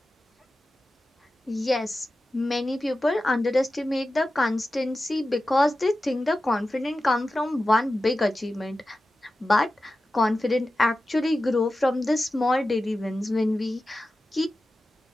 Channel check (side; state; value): both; normal; correlation 0.94